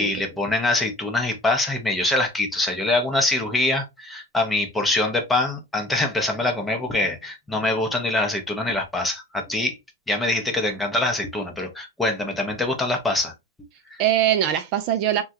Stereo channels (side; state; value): both; normal; correlation 0.42